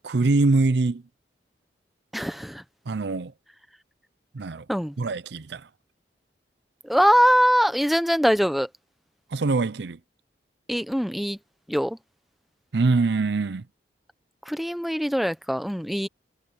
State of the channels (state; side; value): normal; both; correlation 0.87